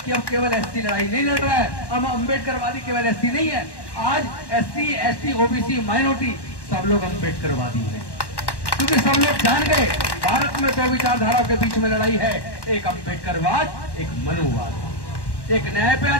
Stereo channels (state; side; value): late; right; 1.1 ms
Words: कि अब केवल एसटी लड़ाई नहीं लड़ रहा है। अब अम्बेडकरवादी केवल एसटी नहीं है, आज एससी, एसटी, ओबीसी, माइनॉरिटी सब लोग अम्बेडकरवादी हैं, क्योंकि सब लोग जान गए भारत में 2 विचारधाराओं के बीच में लड़ाई है, एक अम्बेडकरवाद, एक मनुवाद। एक न्याय पे